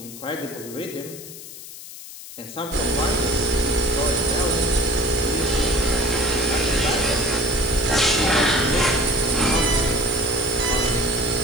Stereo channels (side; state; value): left; noise; hiss, 14 dB below the sound